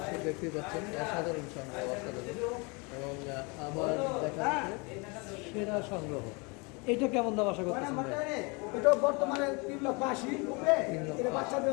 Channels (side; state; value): right; quieter; 29.7 dB